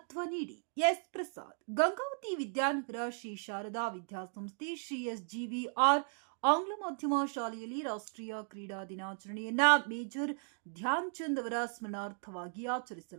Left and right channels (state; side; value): silent; left; 54 dB below the other